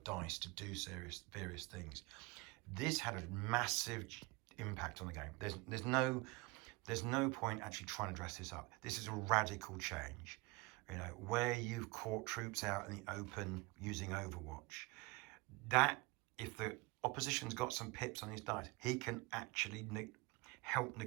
dice to do various things. This had a massive impact on the game. There's no point actually trying to dress this up. This is a radical change. You know, where you've caught troops out in the open using Overwatch, that if the opposition's got some pips on his dice, he can actually help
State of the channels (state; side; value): quieter; left; 24.6 dB